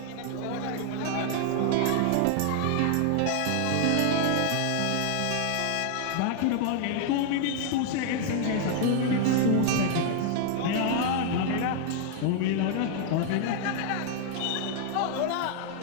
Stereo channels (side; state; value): both; different; correlation 0.00